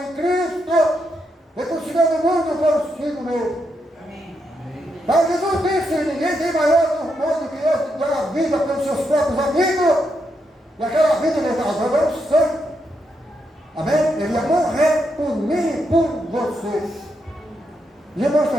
em Cristo, reconciliando o mundo consigo mesmo. Mas Jesus disse, ninguém tem maior amor do que esse, dar a vida pelos seus próprios amigos. E aquela vida ele estava dando sangue. Amém? Ele ia morrer por mim e por você. E irmãos, está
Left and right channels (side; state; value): both; normal; correlation 0.81